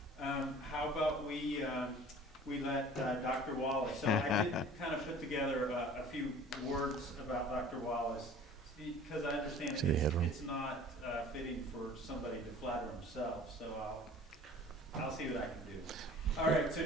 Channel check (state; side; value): normal; both; correlation 0.47